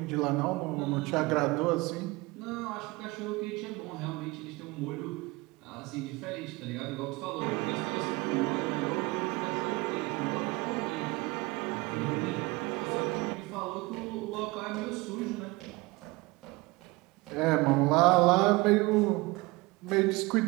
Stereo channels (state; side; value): quieter; left; 23.2 dB